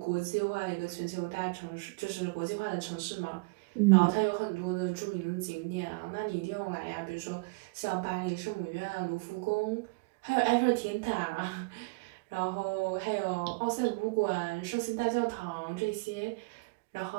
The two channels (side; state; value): left; quieter; 28.8 dB